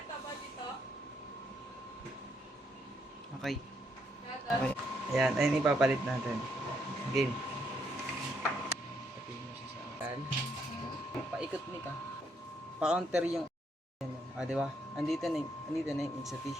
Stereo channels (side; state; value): both; normal; correlation 0.74